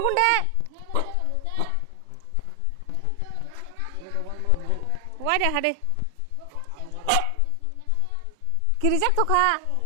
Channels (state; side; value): different; both; correlation 0.00